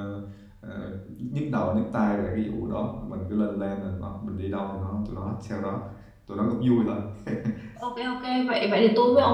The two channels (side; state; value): both; identical; correlation 1.00